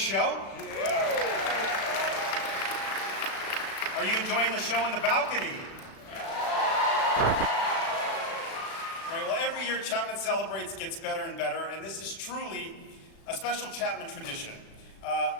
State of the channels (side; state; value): right; late; 36 ms